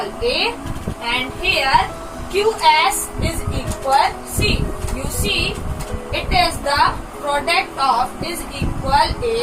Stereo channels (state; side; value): identical; both; correlation 1.00